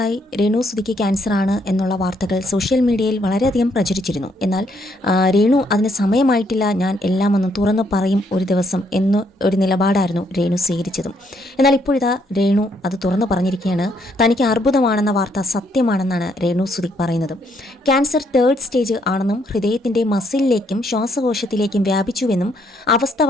രേണു സുധിക്ക് ക്യാൻസറാണ് എന്നുള്ള വാർത്തകൾ സോഷ്യൽ മീഡിയയിൽ വളരെയധികം പ്രചരിച്ചിരുന്നു. എന്നാൽ രേണു അതിന് സമയമായിട്ടില്ല, ഞാൻ എല്ലാം ഒന്ന് തുറന്നു പറയും ഒരു ദിവസം എന്ന് ഒരു നിലപാടായിരുന്നു രേണു സ്വീകരിച്ചതും. എന്നാൽ ഇപ്പോഴിതാ രേണു അത് തുറന്നു പറഞ്ഞിരിക്കുകയാണ്. തനിക്ക് അർബുദമാണെന്ന വാർത്ത സത്യമാണെന്നാണ് രേണു സുധി പറയുന്നത്. ക്യാൻസർ 3rd സ്റ്റേജ് ആണെന്നും ഹൃദയത്തിൻ്റെ മസിലിലേക്കും ശ്വാസകോശത്തിലേക്കും വ്യാപിച്ചുവെന്നും അവസ്ഥ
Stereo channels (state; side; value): normal; both; correlation 0.71